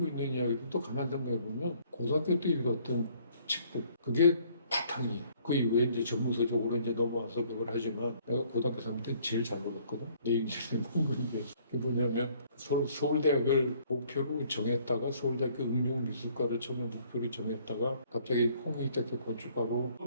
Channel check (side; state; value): both; inverted; correlation -0.61